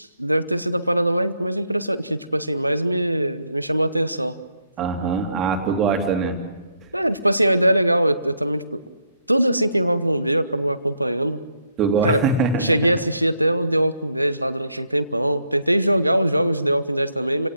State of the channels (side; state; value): both; inverted; correlation -0.74